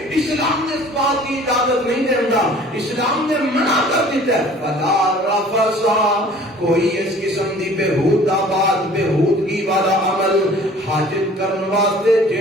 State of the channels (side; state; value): both; normal; correlation 0.49